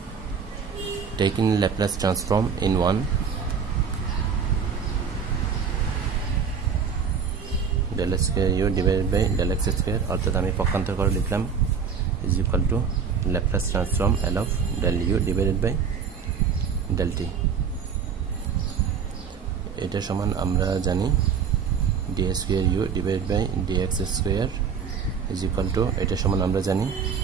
taking Laplace transform in 1 del square u divided by del x square অর্থাৎ আমি পক্ষান্তর করে লিখলাম is equal to Laplace transform L of del u divided by del t। এটা সমান আমরা জানি d square u divided by dx square is equal to এটা সমান আমরা জানি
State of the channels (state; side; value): quieter; left; 6.5 dB